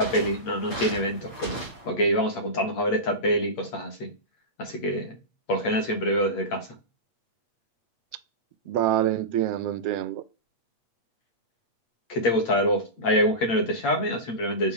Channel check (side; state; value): right; late; 8.6 ms